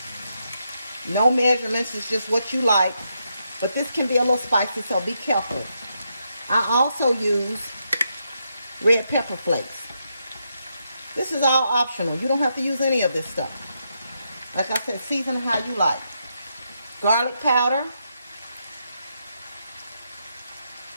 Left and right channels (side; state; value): both; inverted; correlation -0.81